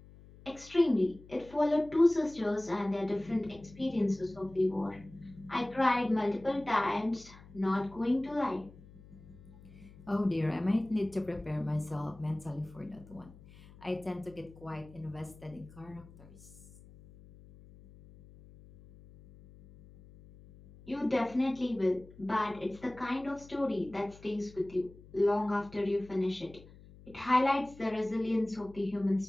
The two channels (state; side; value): noise; left; hum, 21 dB below the sound